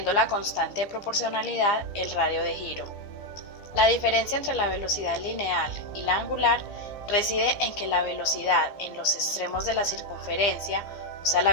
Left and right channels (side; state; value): right; late; 15 ms